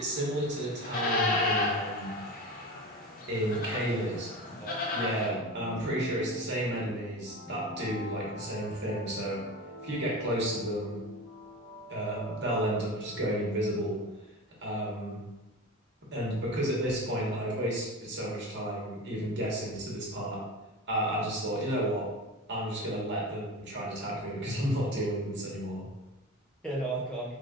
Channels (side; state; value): both; normal; correlation 0.29